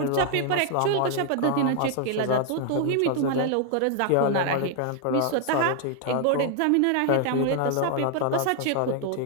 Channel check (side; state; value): both; different; correlation 0.00